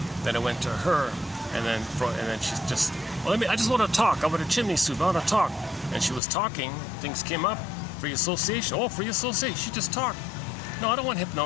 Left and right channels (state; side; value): drops out; right; at 6.2 s